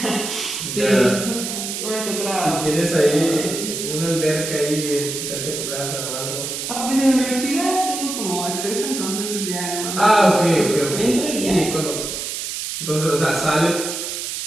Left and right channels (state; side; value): noise; right; hiss, 5 dB below the sound